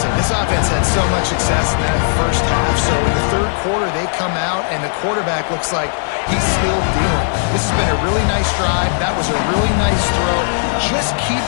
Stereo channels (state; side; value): silent; right; digital silence